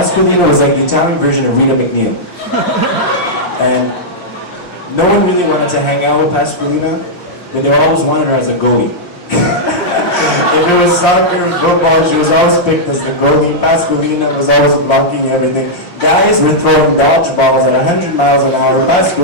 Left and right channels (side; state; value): right; late; 5.7 ms